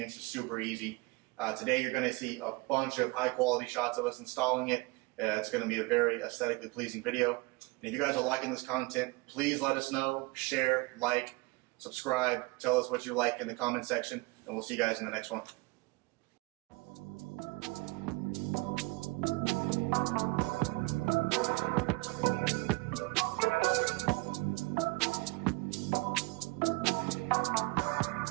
is super easy. Today you're going to see a bunch of high quality shots of us installing it. It's going to be a very aesthetically pleasing video. And if you guys are liking this content, please let us know, share, like, subscribe, tell us what you like in the comment section, and we'll see you guys in the next one.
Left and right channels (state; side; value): quieter; left; 24.6 dB